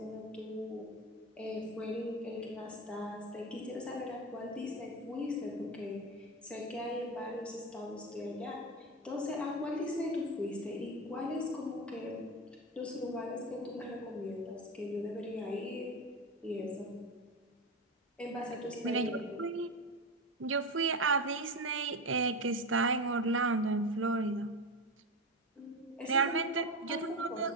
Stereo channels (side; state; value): both; normal; correlation 0.19